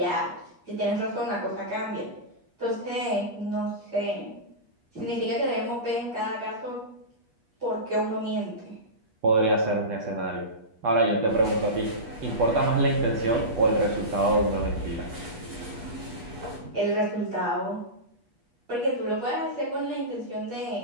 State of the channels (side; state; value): left; late; 8.3 ms